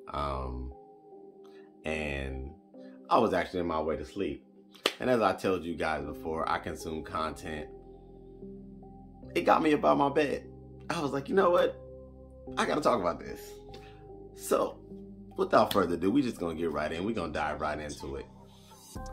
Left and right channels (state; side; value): identical; both; correlation 1.00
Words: and I was actually on my way to sleep. And as I told you guys before, I consume content. It got me about my bed. I was like, you know what? I gotta talk about this. So, without further ado, we just gonna get right in. We're gonna dive right into it.